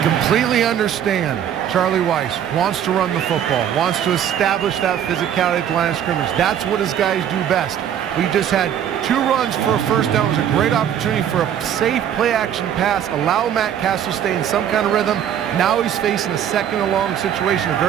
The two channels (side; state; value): left; quieter; 9.7 dB